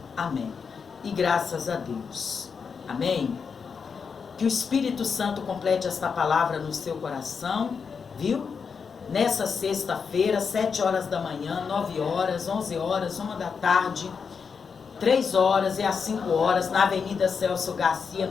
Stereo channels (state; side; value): quieter; right; 5.9 dB